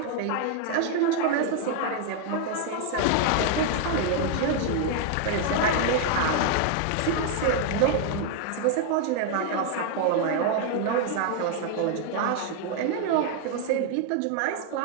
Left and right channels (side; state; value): both; different; correlation 0.00